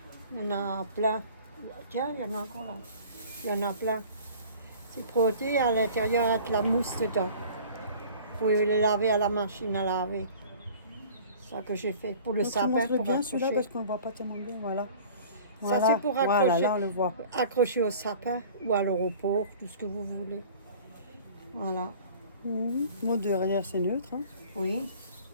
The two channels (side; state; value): both; inverted; correlation -0.46